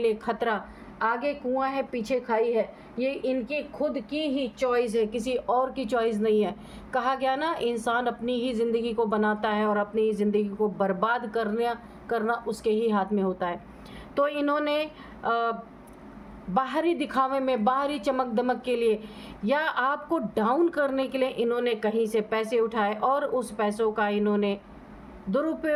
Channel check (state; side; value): identical; both; correlation 1.00